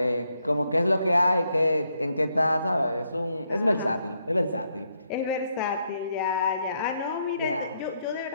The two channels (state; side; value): inverted; both; correlation -0.77